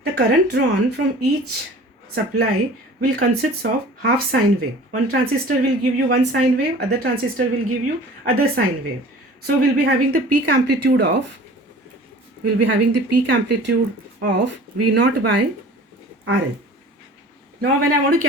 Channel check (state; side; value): normal; both; correlation 0.44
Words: The current drawn from each supply will consist of half sine wave. One transistor will give you one sine wave, other transistor will give you other sine wave. So we'll be having the peak amplitude of V0 by RL. Now when I want to